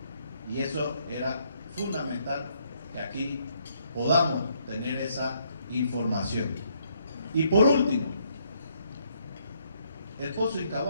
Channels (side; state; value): both; inverted; correlation -0.71